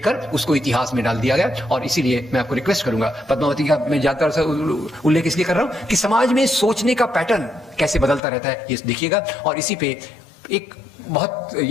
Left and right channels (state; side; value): drops out; right; at 8.2 s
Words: उसको इतिहास में डाल दिया गया। और इसीलिए मैं आपको रिक्वेस्ट करूंगा, पद्मावती का मैं ज्यादातर से उल्लेख इसलिए कर रहा हूं कि समाज में सोचने का पैटर्न कैसे बदलता रहता है, ये देखिएगा। और इसी पे एक बहुत,